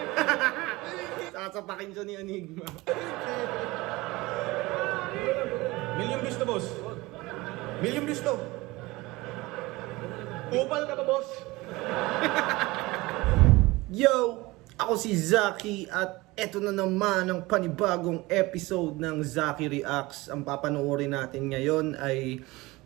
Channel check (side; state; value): left; quieter; 21.2 dB